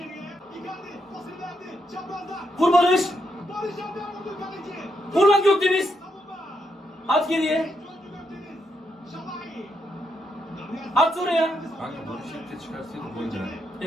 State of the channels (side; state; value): both; normal; correlation 0.80